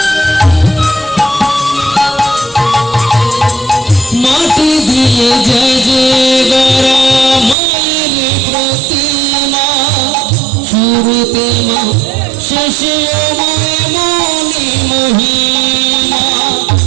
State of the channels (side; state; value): left; drops out; at 7.6 s